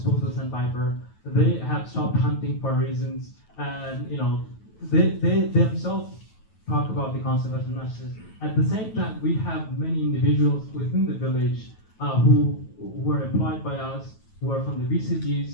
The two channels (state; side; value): late; right; 9.2 ms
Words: sandpiper. They have stopped hunting for reasons, and they themselves talk about the conservation messages. At the same time, we have many individuals within the village who were employed by us, who are from the